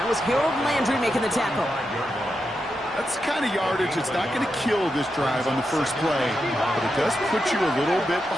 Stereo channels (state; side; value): normal; both; correlation 0.86